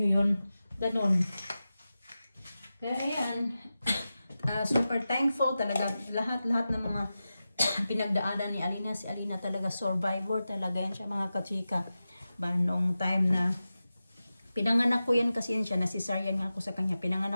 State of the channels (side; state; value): both; inverted; correlation -0.93